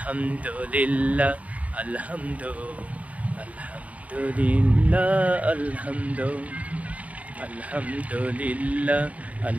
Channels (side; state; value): left; late; 0.069 ms